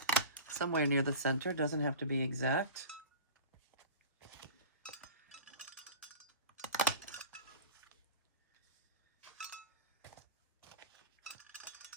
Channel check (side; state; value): both; inverted; correlation -0.35